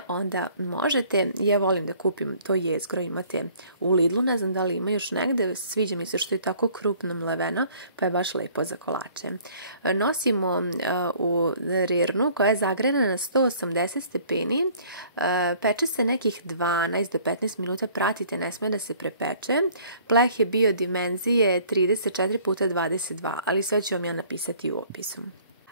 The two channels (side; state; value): both; inverted; correlation -0.55